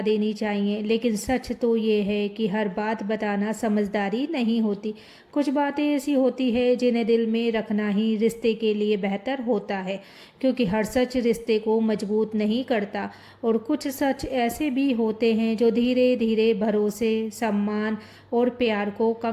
देनी चाहिए, लेकिन सच तो ये है कि हर बात बताना समझदारी नहीं होती। कुछ बातें ऐसी होती है जिन्हें दिल में रखना ही रिश्ते के लिए बेहतर होता है, क्योंकि हर सच रिश्ते को मजबूत नहीं करता। और कुछ सच ऐसे भी होते हैं जो धीरे धीरे भरोसे, सम्मान और प्यार को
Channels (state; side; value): identical; both; correlation 1.00